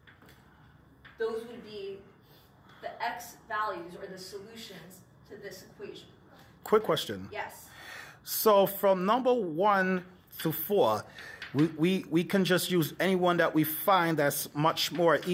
those would be the x values or the solutions to this equation. Quick question. Yes. So from number 1 to 4, we can just use any one that we find that's much more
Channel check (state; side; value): identical; both; correlation 1.00